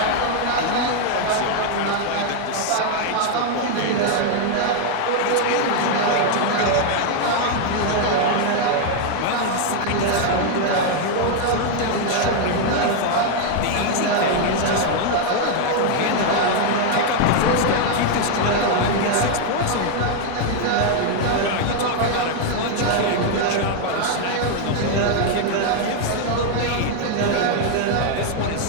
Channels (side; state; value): both; different; correlation 0.00